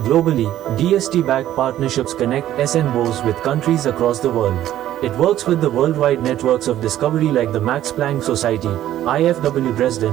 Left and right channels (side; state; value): left; quieter; 12.7 dB